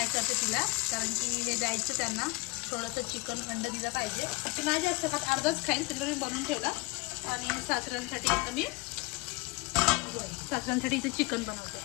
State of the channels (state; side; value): quieter; right; 25.7 dB